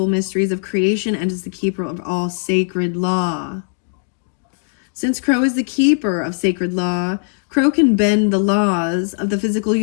mysteries of creation and is the keeper of all sacred law. Since Crow is the keeper of sacred law, Crow can bend the laws of the physical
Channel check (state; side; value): silent; right; digital silence